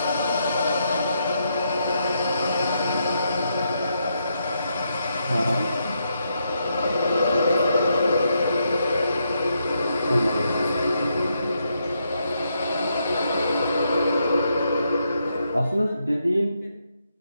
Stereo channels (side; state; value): both; inverted; correlation -0.79